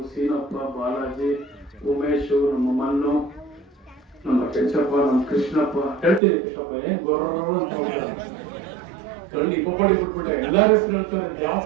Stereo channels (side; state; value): left; drops out; at 6.2 s